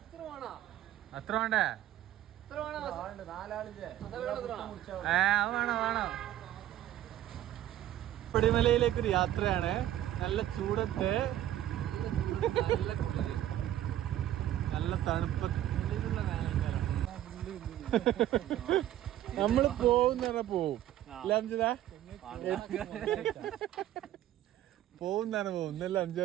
അത്ര വേണ്ടേ? അത് വേണം. പടിമലയിലേക്ക് ഒരു യാത്രയാണ്. നല്ല ചൂടത്ത് നല്ല തണുപ്പ്. നമ്മള് പോകുന്ന പോവും പോകുന്നാണ് പോകും. ഇന്നല്ല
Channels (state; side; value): quieter; left; 12.7 dB